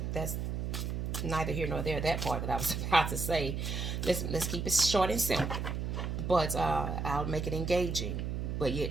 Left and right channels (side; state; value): right; noise; hum, 2 dB below the sound